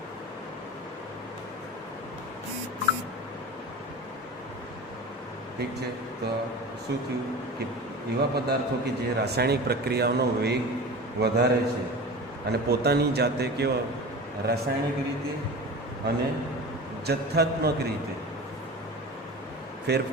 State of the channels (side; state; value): both; normal; correlation 0.33